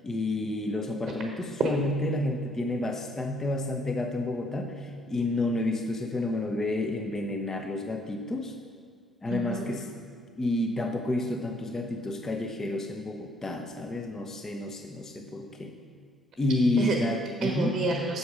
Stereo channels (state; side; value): normal; both; correlation 0.67